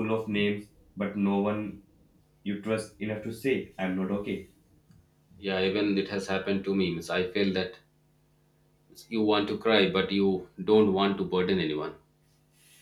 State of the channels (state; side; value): identical; both; correlation 1.00